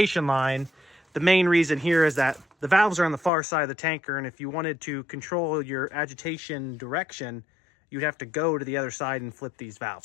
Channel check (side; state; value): right; drops out; at 3.3 s